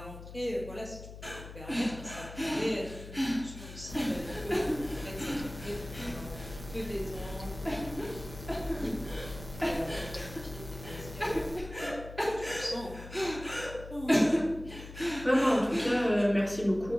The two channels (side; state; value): left; noise; hum, 13 dB below the sound